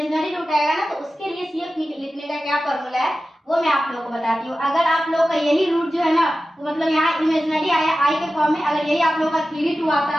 रूट आएगा ना, तो उसके लिए सीएफ लिखने का क्या फॉर्मूला है वो मैं आप लोगों को बताती हूँ। अगर आप लोग का यही रूट जो है ना, तो मतलब यहाँ इमेजिनरी आया आई के फॉर्म में, अगर यही आप लोग का 3 2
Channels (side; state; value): both; normal; correlation 0.94